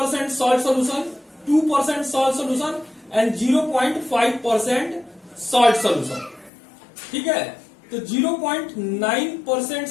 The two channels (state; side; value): drops out; right; at 6.5 s